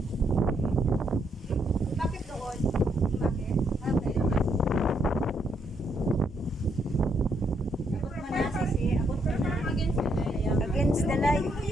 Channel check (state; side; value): normal; both; correlation 0.75